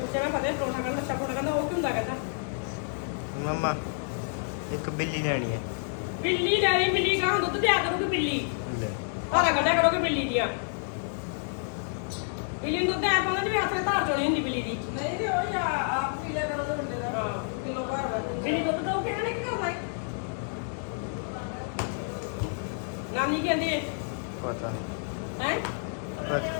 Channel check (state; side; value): silent; right; 59 dB below the other